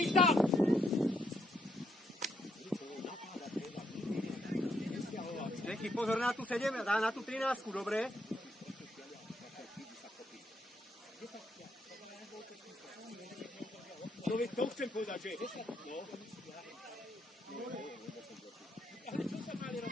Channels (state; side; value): normal; both; correlation 0.76